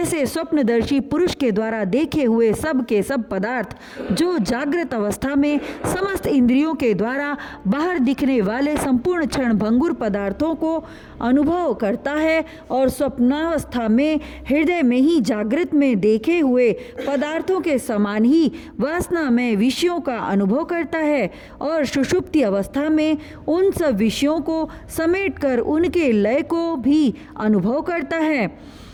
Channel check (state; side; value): identical; both; correlation 1.00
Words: स्वप्नदर्शी पुरुष के द्वारा देखे हुए सब के सब पदार्थ, जो जागृत अवस्था में समस्त इंद्रियों के द्वारा बाहर दिखने वाले संपूर्ण क्षण भंगुर पदार्थों को अनुभव करता है और स्वप्न स्वप्नावस्था में हृदय में ही जागृत में देखे हुए पदार्थों के समान ही वासना में विषयों का अनुभव करता है और सुषुप्ति अवस्था में उन सब विषयों को समेटकर उनके लय को भी अनुभव करता है।